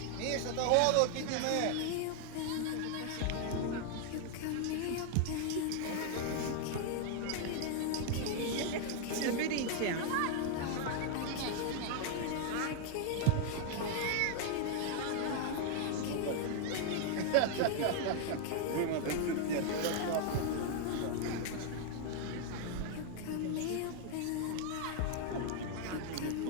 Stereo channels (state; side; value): different; both; correlation 0.00